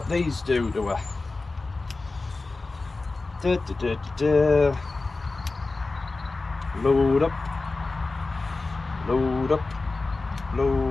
these do to her. Load up, load up,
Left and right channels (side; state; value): right; quieter; 3.5 dB